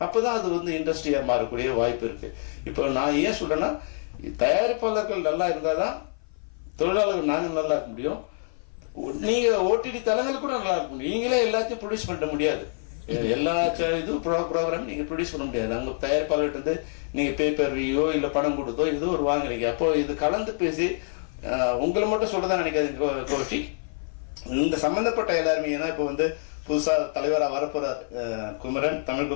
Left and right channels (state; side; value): silent; right; 55 dB below the other